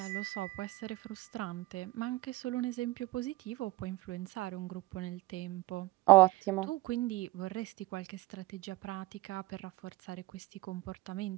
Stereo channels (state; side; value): quieter; left; 19.9 dB